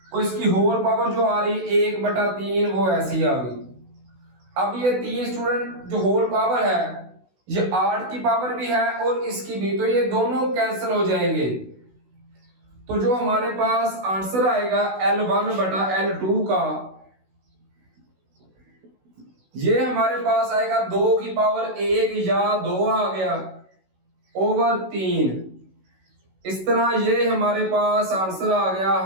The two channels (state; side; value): late; left; 16 ms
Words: और इसकी होल पावर जो आ रही है 1/3 वो ऐसी आ गई। अब ये 3 स्टूडेंट जो होल पावर है ये 8 की पावर भी है और इसकी भी, तो ये दोनों कैंसिल हो जाएंगे। तो जो हमारे पास आंसर आएगा L1/L2 का, ये हमारे पास आएगा 2 की पावर 1 या 2 आ गया ओवर 3। इस तरह ये हमारे पास आंसर आ गया